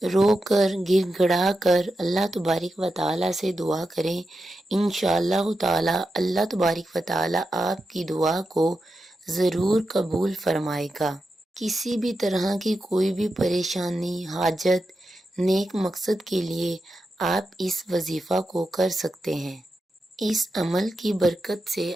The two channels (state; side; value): normal; both; correlation 0.89